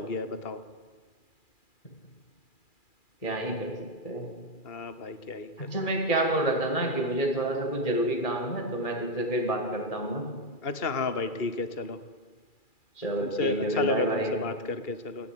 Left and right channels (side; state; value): right; late; 2.4 ms